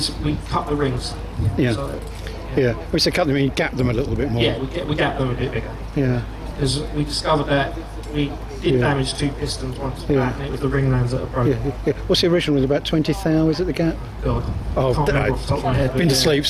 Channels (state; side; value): identical; both; correlation 1.00